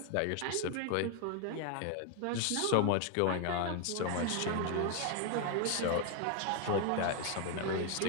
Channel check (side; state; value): both; different; correlation 0.00